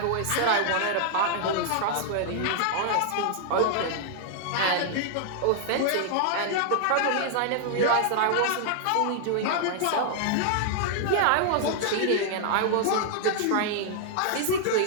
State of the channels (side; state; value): both; different; correlation -0.01